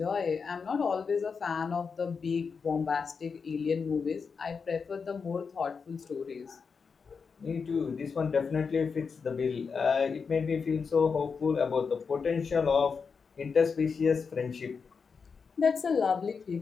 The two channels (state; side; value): quieter; right; 5.5 dB